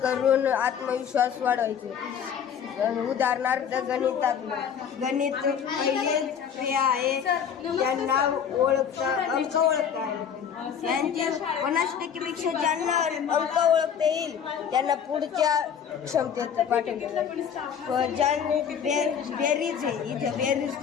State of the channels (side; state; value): right; quieter; 7.9 dB